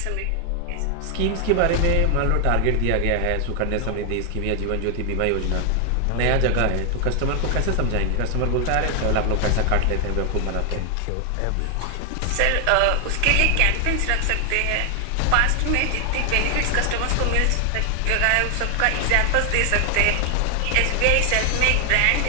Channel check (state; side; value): different; both; correlation 0.00